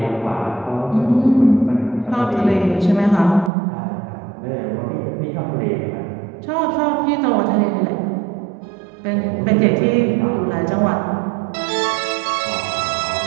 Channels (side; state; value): left; drops out; at 3.5 s